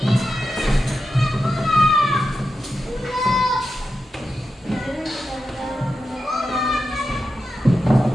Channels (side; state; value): both; normal; correlation 0.90